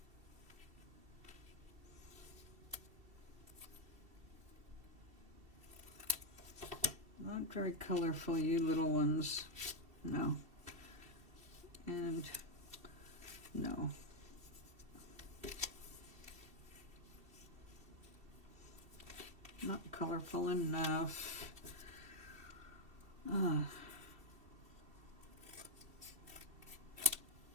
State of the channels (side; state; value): left; late; 2.7 ms